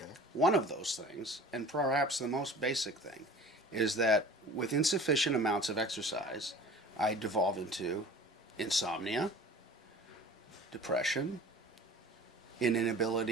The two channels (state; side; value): normal; both; correlation 0.43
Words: One of those things, and perhaps the most basic thing, is that with insufficient amounts of exercise, I devolve into insomnia, depression, an